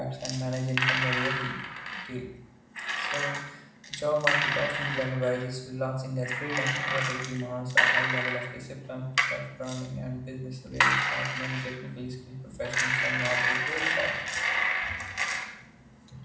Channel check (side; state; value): both; identical; correlation 1.00